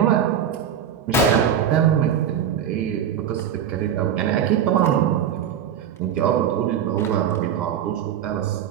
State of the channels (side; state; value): left; quieter; 8.9 dB